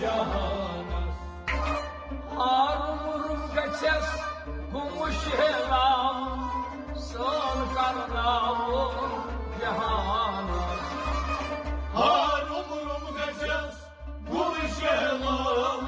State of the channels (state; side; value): identical; both; correlation 1.00